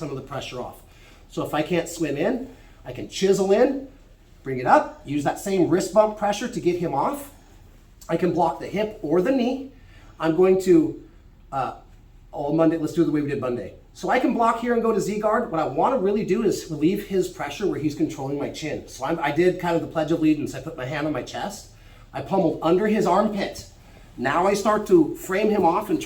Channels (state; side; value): identical; both; correlation 1.00